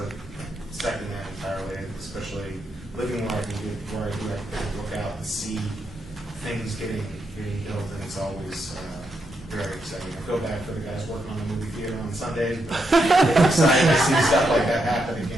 second that entirely, especially living where I do, I can look out and see things getting built, and it's always very exciting. I feel bad for the guys working on the movie theater on Sundays, but it's exciting to see stuff like that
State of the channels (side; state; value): both; normal; correlation 0.81